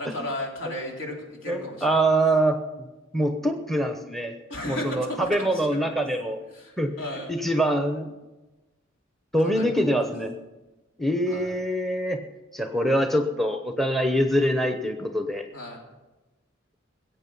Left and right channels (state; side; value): normal; both; correlation 0.72